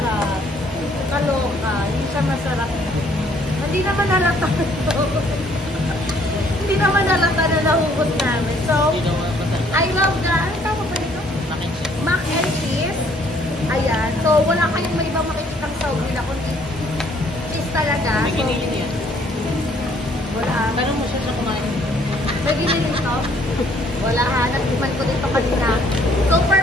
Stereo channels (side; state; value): both; normal; correlation 0.63